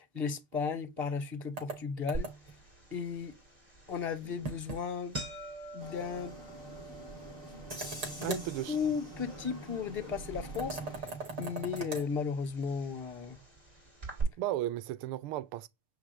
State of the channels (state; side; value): late; left; 6.7 ms